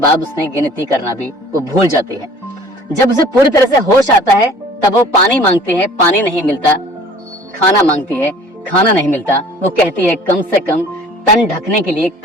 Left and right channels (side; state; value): both; normal; correlation 0.49